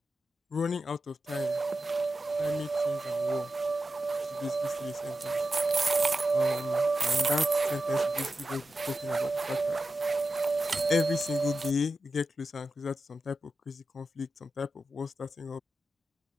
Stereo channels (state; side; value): normal; both; correlation 0.91